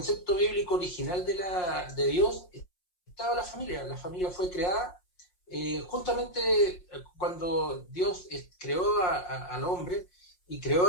bíblico original de Dios estaba la familia. La familia fue creada justamente cuando Dios creó al hombre y creó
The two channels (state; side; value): late; right; 5.6 ms